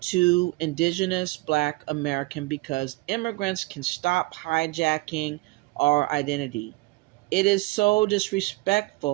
to Indigenous Black American because immigrants can stop hijacking our identity. It is so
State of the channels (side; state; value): left; quieter; 21.8 dB